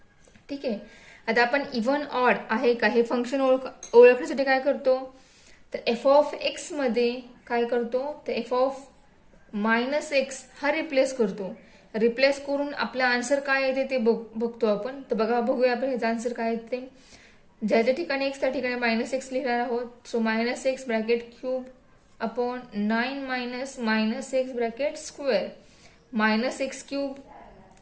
ठीक आहे. आता आपण इव्हन ऑड आहे का हे function ओळखण्यासाठी काय करतो, तर एफ ऑफ एक्स मध्ये काय करतो, तर एफ ऑफ -x हा रिप्लेस करतो. रिप्लेस करून आपला आन्सर काय येते ते बघतो आपण. तर बघूया आपण ह्याचा आन्सर काय येते. ज्याच्या ठिकाणी x त्या ठिकाणी -x लिहिणार आहोत. So -x bracket cube upon 9 minus -x bracket square. -x cube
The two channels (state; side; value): identical; both; correlation 1.00